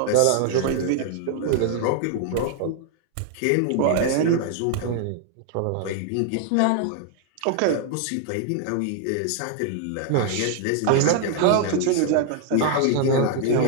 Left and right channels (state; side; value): different; both; correlation 0.00